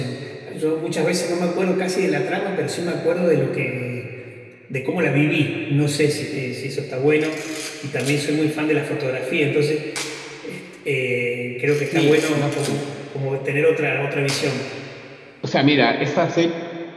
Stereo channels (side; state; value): both; identical; correlation 1.00